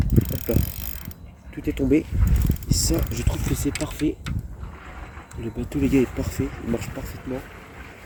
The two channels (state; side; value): identical; both; correlation 1.00